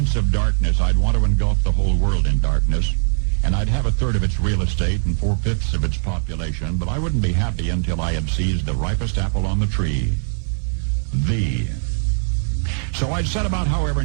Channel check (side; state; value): left; silent; 56 dB below the other